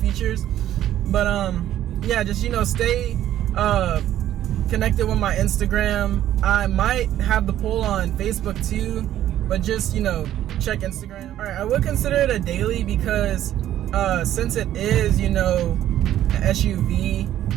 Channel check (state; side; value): quieter; left; 12.2 dB